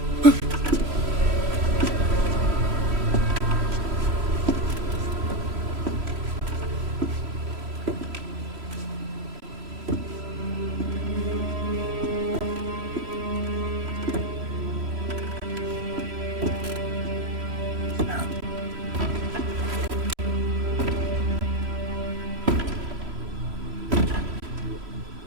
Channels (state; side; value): late; left; 3.0 ms